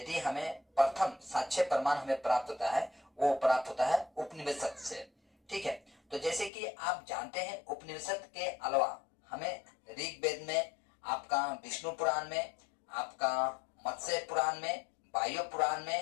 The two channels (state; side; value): drops out; right; at 6.5 s